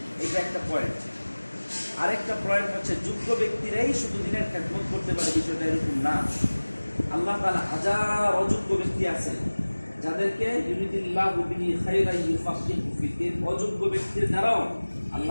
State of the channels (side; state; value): both; inverted; correlation -1.00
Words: এটা একটা পয়েন্ট। আরেকটা পয়েন্ট হচ্ছে যোগ্য ব্যক্তিরাই শুধু দ্বীনের খেদমত করতে পারে, বিষয়টা এরকম না। আল্লাহ তাআলা হাজার অযোগ্য ব্যক্তি আছে যাদেরকে ইউরিদুল্লাহু বিহি খায়রান ইউফাক্কিহু ফিদ্দীন, অযোগ্য ব্যক্তির দ্বারাও